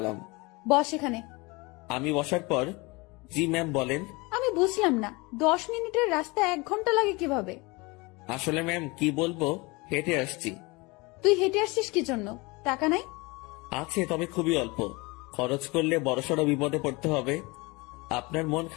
বস এখানে। আমি বসার পর, জি ম্যাম বলেন। আমি বুঝলাম না, 10 মিনিটের রাস্তা 1 ঘন্টা লাগে কিভাবে? আসলে ম্যাম কি বলবো, হেঁটে আসছি। তুই হেঁটে আসছিস কি জন্য? টাকা নাই? আছে, তবে খুবই অল্প। খরচ করলে বড়সড় বিপদে পড়তে হবে। আপনার মন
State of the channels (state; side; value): quieter; right; 25.5 dB